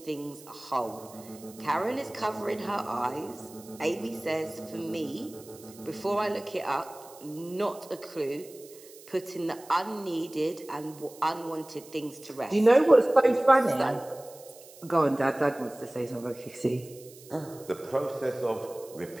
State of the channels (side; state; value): right; noise; hiss, 21 dB below the sound